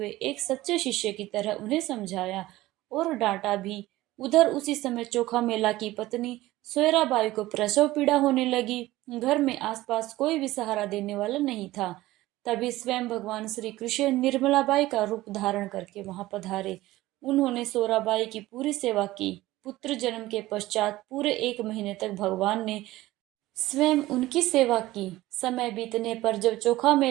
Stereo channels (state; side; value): quieter; left; 17.2 dB